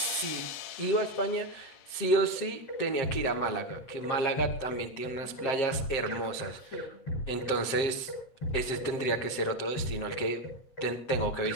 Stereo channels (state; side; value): late; right; 7.6 ms